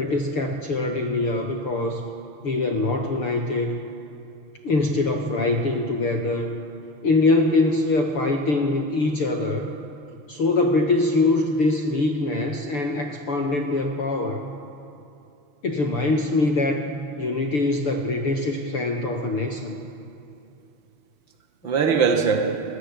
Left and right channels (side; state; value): right; late; 6.9 ms